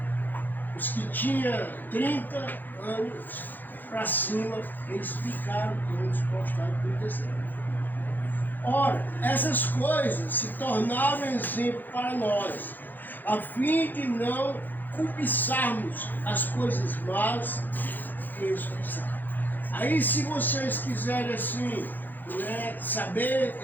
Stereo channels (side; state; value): right; late; 0.087 ms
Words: Os que tinham 30 anos para cima, eles ficaram todos prostrados no deserto. Ora, essas coisas se tornaram exemplo para nós, a fim de não cobiçarmos as coisas más que eles cobiçaram. Aí, se vocês quiserem assim, né, saber